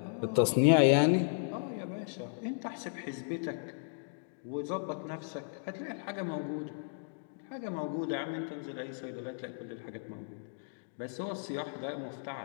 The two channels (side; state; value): right; silent; digital silence